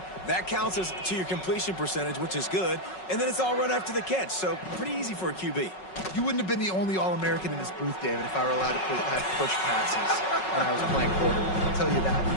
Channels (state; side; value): late; right; 5.4 ms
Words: That counts as to your completion percentage, which is good. And then it's all run after the catch, so pretty easy for a QB. You wouldn't have been the only All-American in this booth, David, if I were allowed to push passes when I was playing quarterback. I'll tell you